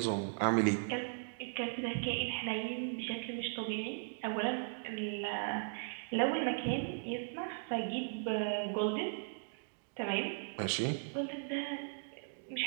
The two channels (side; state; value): left; silent; digital silence